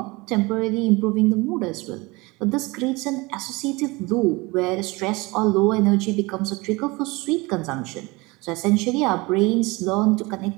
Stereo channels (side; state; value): left; quieter; 24.1 dB